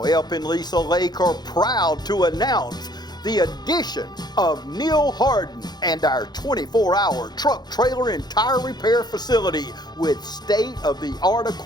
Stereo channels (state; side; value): late; right; 0.20 ms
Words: Elp and Lisa Lake are proud to announce the addition of Neil Harden and our 24-hour truck, trailer, and tire repair facility with state-of-the-art